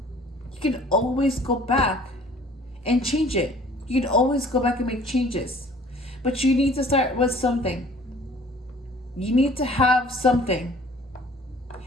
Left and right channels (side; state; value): both; normal; correlation 0.52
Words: you can always go back and change it. You can always go back and make changes. But you need to start with something. You need to have something.